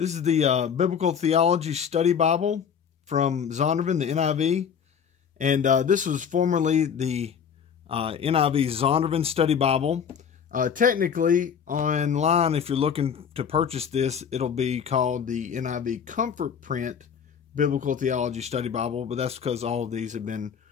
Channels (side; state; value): right; quieter; 7.4 dB